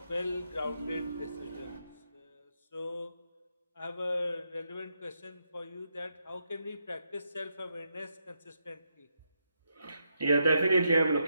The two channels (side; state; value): both; inverted; correlation -0.81